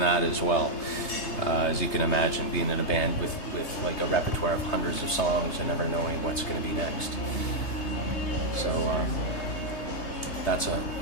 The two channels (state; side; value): late; right; 3.3 ms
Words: as well. As you can imagine, being in a band with like a repertoire of hundreds of songs and never knowing what's going to be next. So that's a